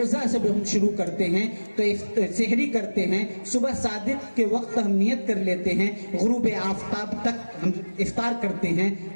سے ہم شروع کرتے ہیں تو سحری کرتے ہیں، صبح صادق کے وقت ہم نیت کر لیتے ہیں، غروب آفتاب تک ہم افطار کرتے ہیں،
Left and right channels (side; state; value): both; inverted; correlation -1.00